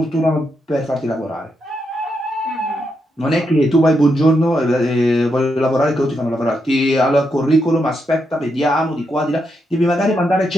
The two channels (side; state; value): both; normal; correlation 0.82